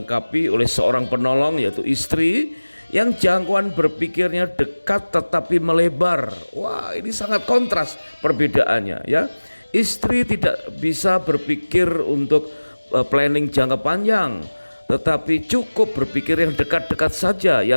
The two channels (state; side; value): inverted; both; correlation -1.00